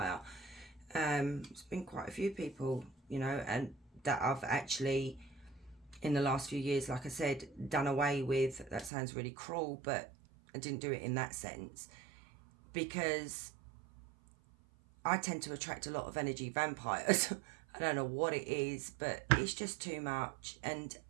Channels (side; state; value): left; drops out; at 8.9 s